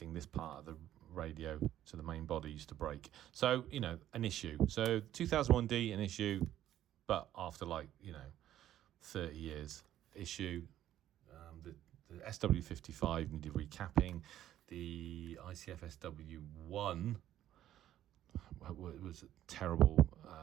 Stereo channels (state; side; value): quieter; left; 12.2 dB